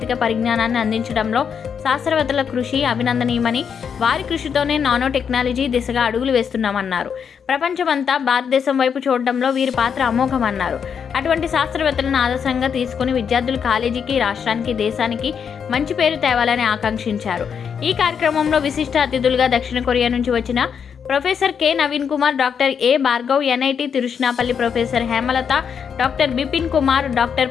పరిజ్ఞానాన్ని అందించడంలో శాస్త్రవేత్తల కృషి అభినందనీయమని, వారి కృషితోనే నానో టెక్నాలజీ దిశగా అడుగులు వేస్తున్నామన్నారు. ప్రపంచమంతా భారతదేశం వైపు చూడడంలో వీరి పాత్ర అమోఘమన్నారు. అటువంటి శాస్త్రవేత్తలను ఆదర్శంగా తీసుకుని విద్యార్థులు కాలేజీకి, రాష్ట్రానికి, దేశానికి మంచి పేరు తేవాలని ఆకాంక్షించారు. ఈ కార్యక్రమంలో విశిష్ట అతిథులుగా దక్షిణ కొరియా నుంచి వచ్చిన professor K Naveen Kumar, doctor A Bhargav, NIT Tiruchirappalli professor Hemalatha, doctor Bipin Kumar, doctor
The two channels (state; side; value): quieter; right; 7.1 dB